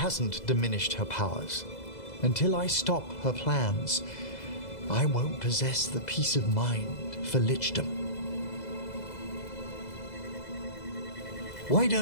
diminished her powers. Until I stop her plans, I won't possess the peace of mind for lichdom. Why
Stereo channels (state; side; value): late; right; 2.0 ms